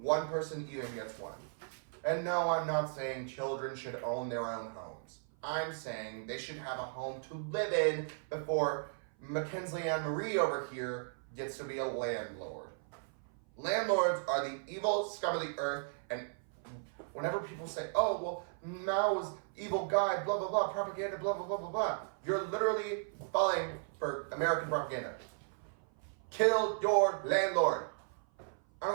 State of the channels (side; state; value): left; silent; 54 dB below the other